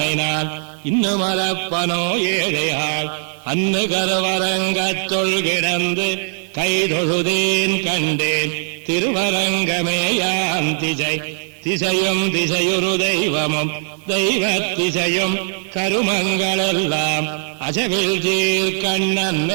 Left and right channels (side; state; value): left; silent; 55 dB below the other